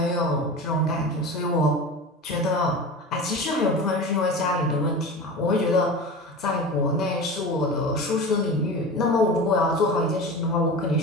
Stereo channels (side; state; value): both; normal; correlation 0.31